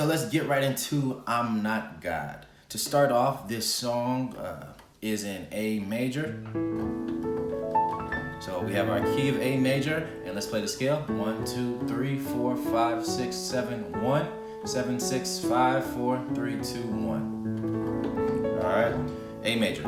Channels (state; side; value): identical; both; correlation 1.00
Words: let's get right into I'm Not God. To start off, this song is in A major. So we have our key of A major, and let's play the scale. 1, 2, 3, 4, 5, 6, 7, 1, 7, 6, 5, 4, 3, 2, 1. All right, A major.